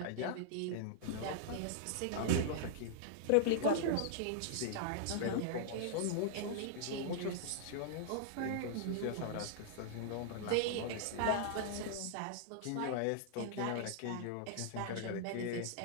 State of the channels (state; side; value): different; both; correlation -0.01